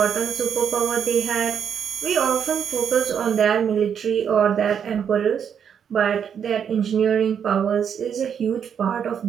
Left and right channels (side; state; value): left; quieter; 7.9 dB